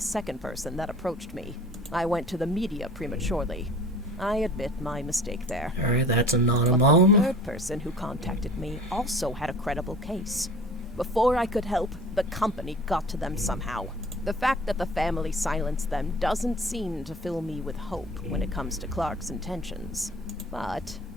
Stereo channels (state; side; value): normal; both; correlation 0.43